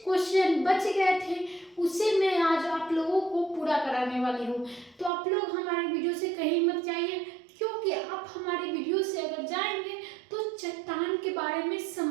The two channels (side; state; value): left; drops out; at 5.1 s